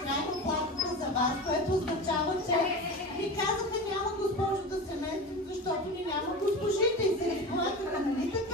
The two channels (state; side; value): normal; both; correlation 0.29